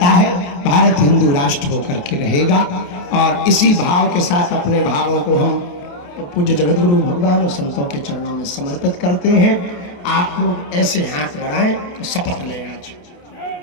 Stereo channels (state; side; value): late; right; 28 ms